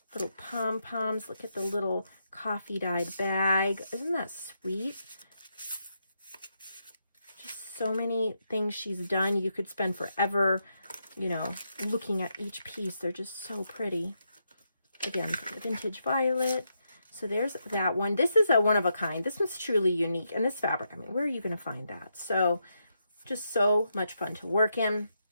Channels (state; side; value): inverted; both; correlation -0.82